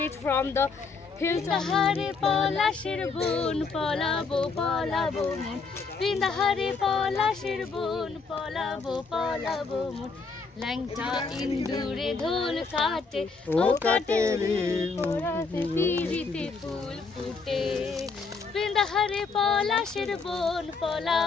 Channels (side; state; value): right; quieter; 4.6 dB